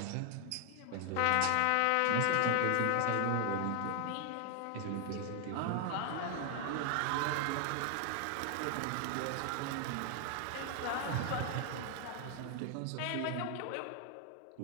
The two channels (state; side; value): different; both; correlation 0.00